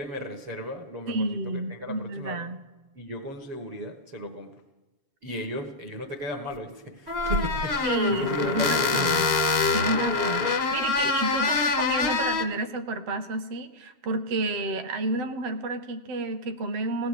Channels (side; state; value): left; late; 7.3 ms